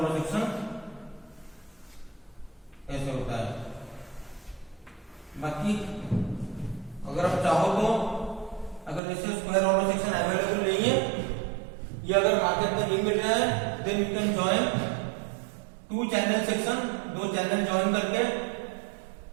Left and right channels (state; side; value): drops out; left; at 9.0 s